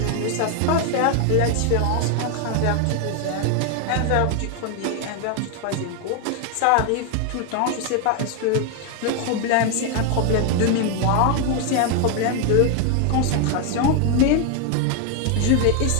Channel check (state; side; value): different; both; correlation 0.01